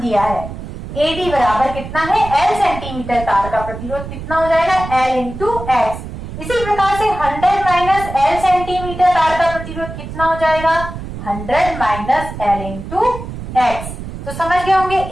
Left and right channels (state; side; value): noise; right; rumble, 9 dB below the sound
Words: दिया है। एडी बराबर कितना है? L सेंटीमीटर तार का प्रतिरोध कितना हो जाएगा? L into x. इसी प्रकार से 100 माइनस L सेंटीमीटर तार का प्रतिरोध कितना हो जाएगा? 100 माइनस L इंटू एक्स। तो समझ गए होंगे